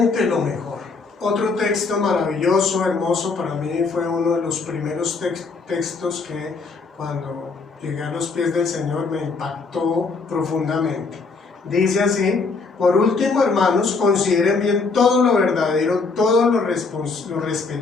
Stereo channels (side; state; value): right; quieter; 4.3 dB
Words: lo mejor. Otro texto maravilloso, hermoso, para mí fue uno de los primeros textos que cuando llegué a los pies del Señor me impactó profundamente. Dice así: por último, hermanos, consideren bien todo lo verdadero, todo lo